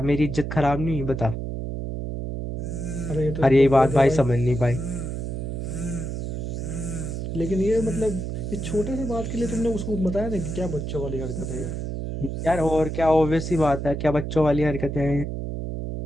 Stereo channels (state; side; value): noise; right; hum, 4 dB below the sound